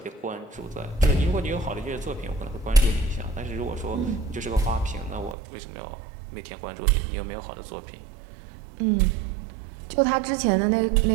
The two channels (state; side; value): drops out; left; at 5.4 s